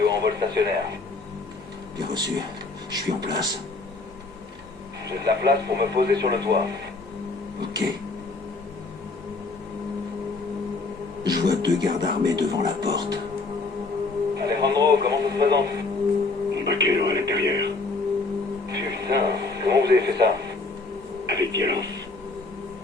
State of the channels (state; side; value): quieter; right; 3.6 dB